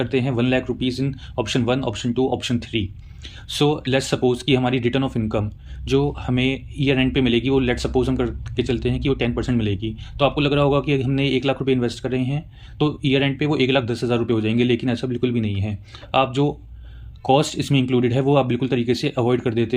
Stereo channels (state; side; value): identical; both; correlation 1.00